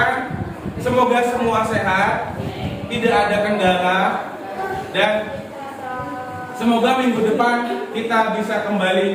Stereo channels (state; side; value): identical; both; correlation 1.00